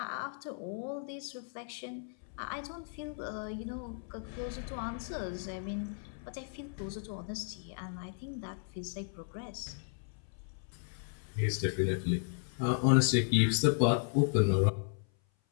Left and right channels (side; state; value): right; silent; 54 dB below the other